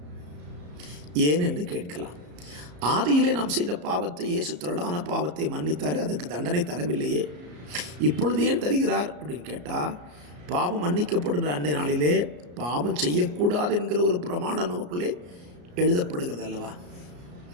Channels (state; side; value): late; left; 34 ms